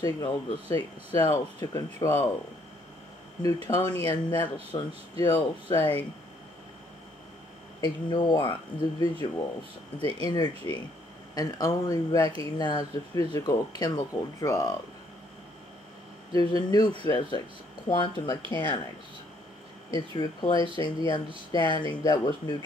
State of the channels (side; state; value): both; normal; correlation 0.67